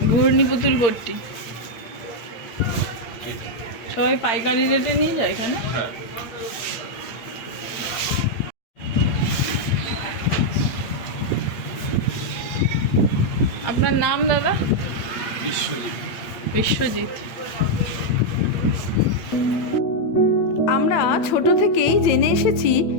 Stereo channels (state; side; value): late; right; 8.6 ms